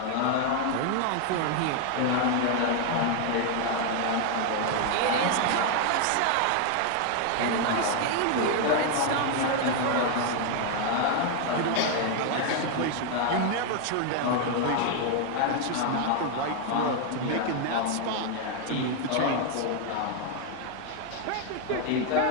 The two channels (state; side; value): different; both; correlation 0.01